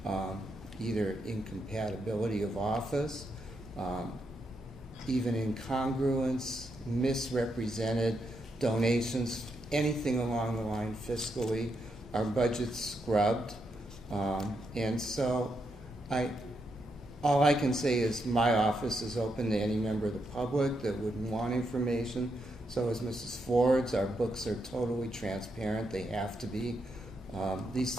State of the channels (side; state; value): both; normal; correlation 0.82